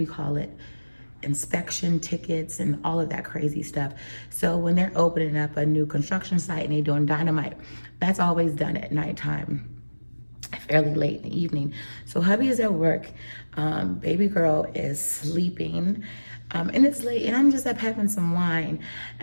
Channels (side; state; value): both; inverted; correlation -1.00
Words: you call it? Inspection tickets and all of that crazy stuff. So when they're opening up a new construction site and they're doing dynamite, that's always done at nighttime, fairly late in the evening. So hubby is at work. Baby girl is sleeping. And it's late, and I'm just up having some wine.